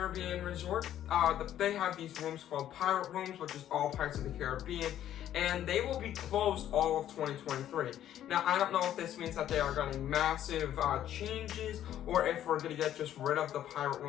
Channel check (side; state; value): right; quieter; 11.4 dB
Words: Resort, they have these rooms called Pirate Rooms, which is all Pirates of the Caribbean, and they will be closed all of 2023. Now, I don't know if this means that they are getting massive changes, or if we're going to get just rid of the Pirate